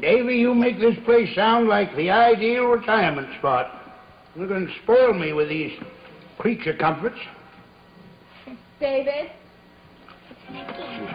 Davy, you make this place sound like the ideal retirement spot. You're going to spoil me with these creature comforts. David?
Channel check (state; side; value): identical; both; correlation 1.00